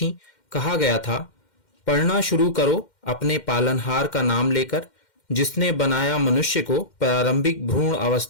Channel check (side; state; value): right; late; 2.1 ms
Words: कहा गया था, पढ़ना शुरू करो अपने पालनहार का नाम लेकर, जिसने बनाया मनुष्य को प्रारंभिक भ्रूण